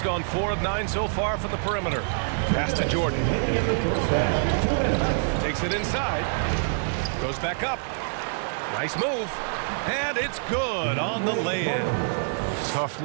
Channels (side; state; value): left; silent; digital silence